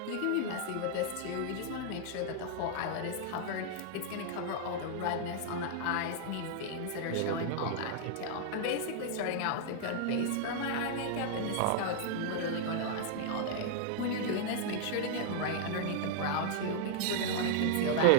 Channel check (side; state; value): both; different; correlation -0.01